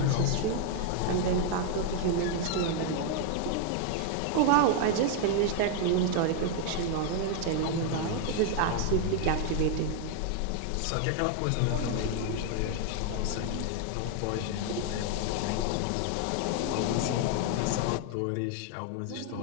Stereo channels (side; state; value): both; different; correlation 0.01